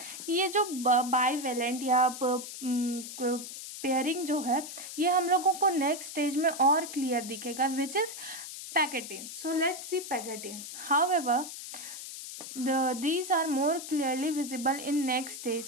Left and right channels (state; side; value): noise; left; hiss, 10 dB below the sound